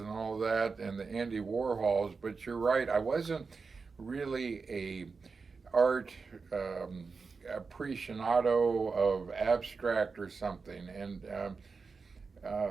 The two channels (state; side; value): quieter; left; 4.7 dB